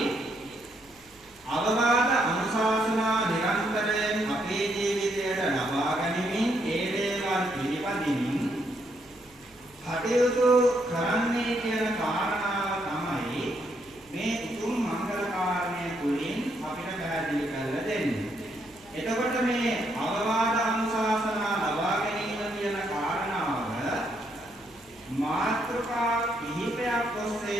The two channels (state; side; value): noise; right; hum, 29 dB below the sound